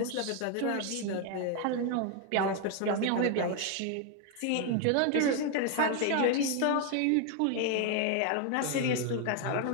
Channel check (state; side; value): different; both; correlation 0.01